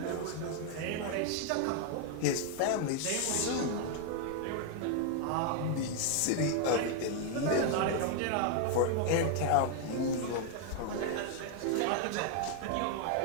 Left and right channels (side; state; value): both; different; correlation 0.00